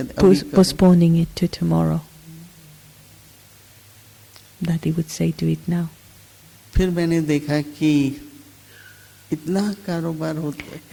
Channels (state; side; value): identical; both; correlation 1.00